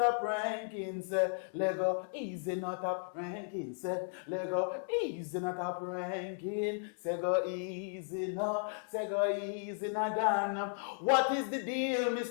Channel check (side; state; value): right; silent; digital silence